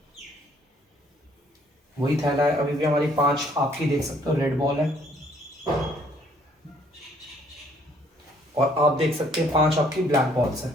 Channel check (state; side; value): normal; both; correlation 0.63